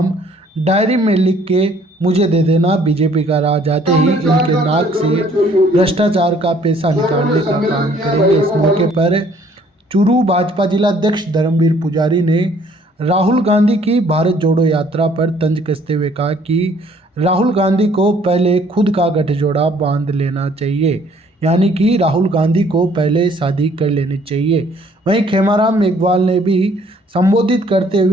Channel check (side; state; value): both; normal; correlation 0.60